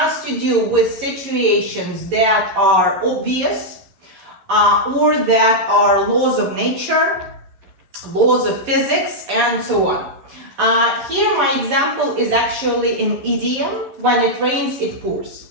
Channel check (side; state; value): left; late; 11 ms